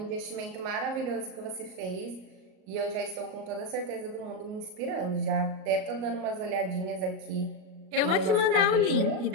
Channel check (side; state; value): left; late; 38 ms